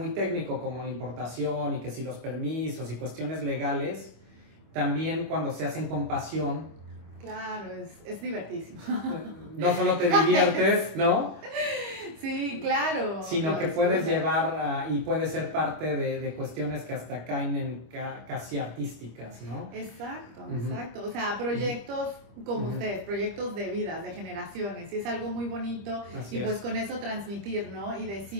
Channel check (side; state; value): left; late; 25 ms